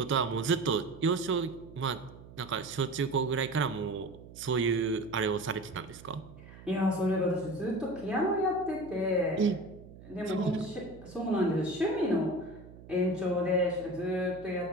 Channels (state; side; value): noise; right; hum, 18 dB below the sound